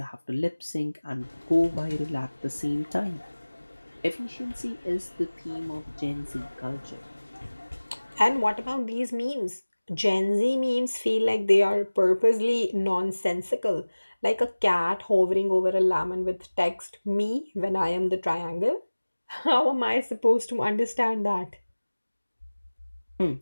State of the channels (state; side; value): inverted; both; correlation -1.00